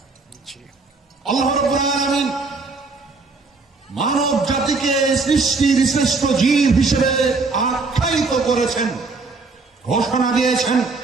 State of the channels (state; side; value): quieter; left; 4.0 dB